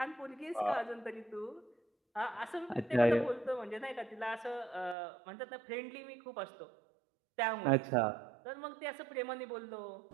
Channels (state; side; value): drops out; left; at 5.0 s